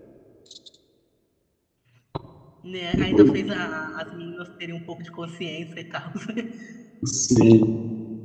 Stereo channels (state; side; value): identical; both; correlation 1.00